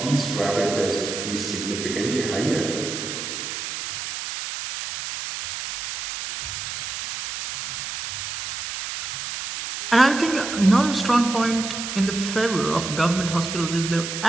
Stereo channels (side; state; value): right; noise; hiss, 6 dB below the sound